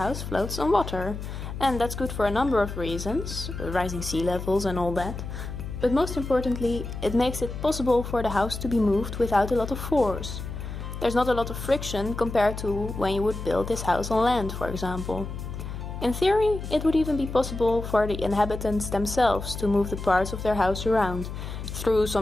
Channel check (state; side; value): noise; left; hum, 8 dB below the sound